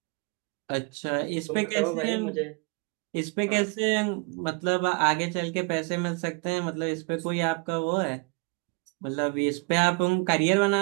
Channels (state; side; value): quieter; left; 32.4 dB